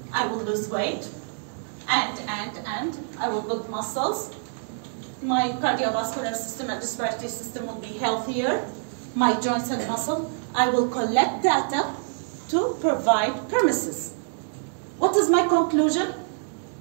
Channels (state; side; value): silent; left; 61 dB below the other